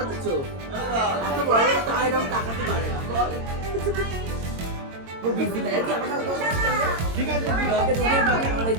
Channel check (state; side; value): late; left; 22 ms